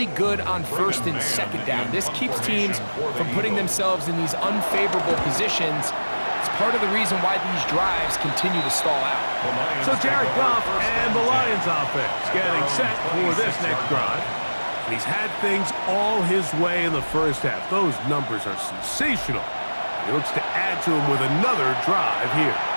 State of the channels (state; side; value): inverted; both; correlation -1.00